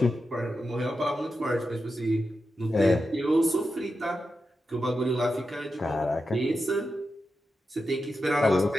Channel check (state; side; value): normal; both; correlation 0.89